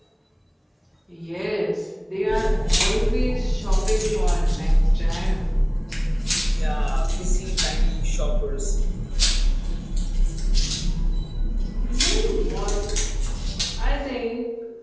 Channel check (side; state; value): both; identical; correlation 1.00